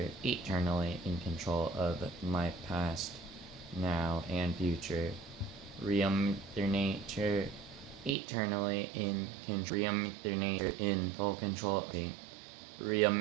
eternally in control of my past, now, and future. Real Mother Nature eternally in control. Real Mother Nature in full control of me. Real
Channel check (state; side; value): drops out; left; at 8.2 s